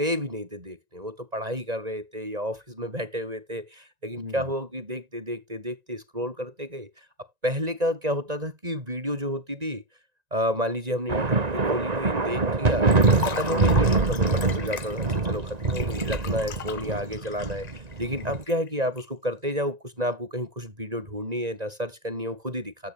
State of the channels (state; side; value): late; left; 1.9 ms